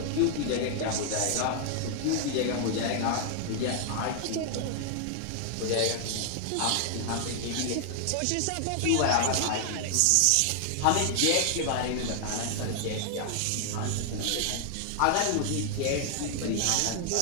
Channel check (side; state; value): both; different; correlation 0.00